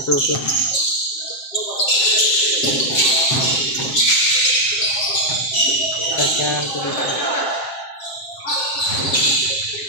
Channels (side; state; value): right; late; 7.6 ms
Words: Susun. Tapos yan.